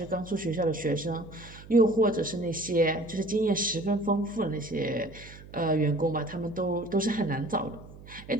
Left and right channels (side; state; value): right; noise; hum, 18 dB below the sound